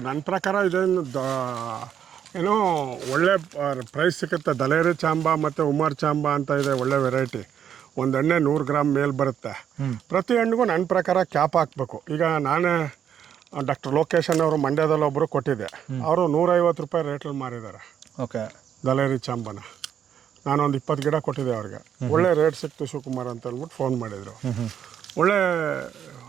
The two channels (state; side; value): quieter; left; 9.0 dB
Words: ನನ್ನ ಪ್ರಕಾರ ಇದೇನು ಏನೋ ಒಳ್ಳೆ ಪ್ರೈಸ್ ಸಿಗುತ್ತೆ. ದಲೇರಿ ಚಾಂಬಾ ಮತ್ತು ಉಮರ್ ಚಾಂಬಾ ಅಂತ ಇದೆ, ಒಳ್ಳೆ ವೆರೈಟಿ. ಒಂದು ಎಣ್ಣೆ 100 ಗ್ರಾಮ್ ಮೇಲೆ ಬರುತ್ತೆ. ಪ್ರತಿ ಹಣ್ಣಿಗೂ ನನ್ನ ಪ್ರಕಾರ ಕ್ಯಾಪ್ ಹಾಕಬೇಕು. ಈಗ ನಾನೇ ಡಾಕ್ಟರ್ ಲೋಕೇಶನ್ ಅವರು ಮಂಡ್ಯದಲ್ಲಿ ಒಬ್ಬರು ಕೊಟ್ಟಿದ್ದೆ, ಅವರು 150 ರೂಪಾಯಿ ರೇಟಲ್ಲಿ ಮಾರಿದ್ದಾರೆ. ಓಕೆ, ದಲೇರಿ ಚಾಂಬಾನ ನಾನೊಂದು 20 ಗಿಡ ಕೊಟ್ಟಿದ್ದೆ ಅವ್ರಿಗೆ. ಒಳ್ಳೆ ರೇಟ್ ಸಿಕ್ತು ಶಿವಕುಮಾರ್ ಅಂತ ಅಂದ್ಬಿಟ್ಟು ಫೋನ್ ಮಾಡಿದರು. ಒಳ್ಳೆ,